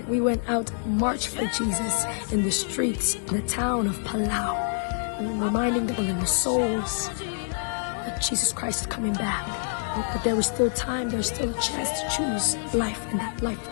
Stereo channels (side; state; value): right; silent; digital silence